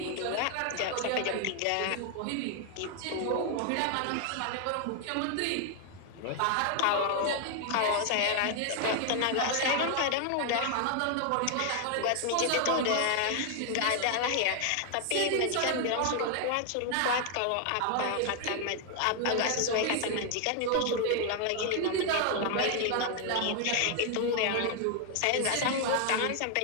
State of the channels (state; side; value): different; both; correlation 0.00